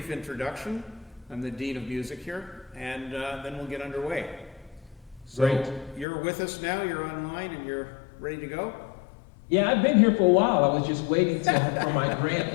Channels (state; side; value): drops out; right; at 6.1 s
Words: introduction. I'm the Dean of Music here, and then we'll get underway. So Great. you're with us now, you're online, and you're ready to go? Yeah, I've been here for a while. I was just waiting for my grand